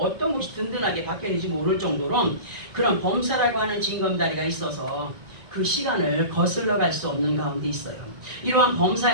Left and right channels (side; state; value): left; late; 1.9 ms